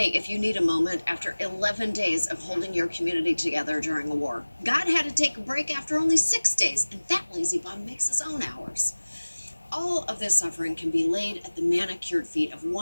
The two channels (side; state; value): both; inverted; correlation -1.00